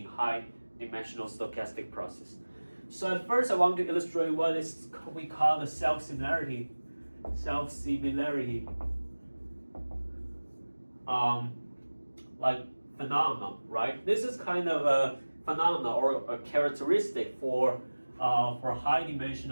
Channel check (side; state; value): both; inverted; correlation -1.00